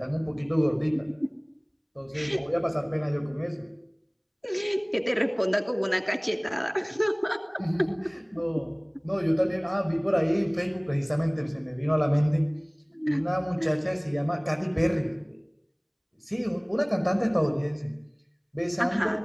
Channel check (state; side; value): identical; both; correlation 1.00